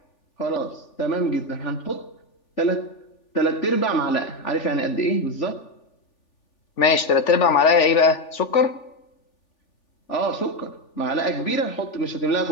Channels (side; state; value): right; late; 3.4 ms